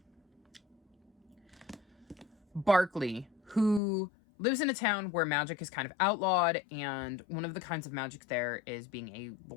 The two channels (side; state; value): right; drops out; at 3.8 s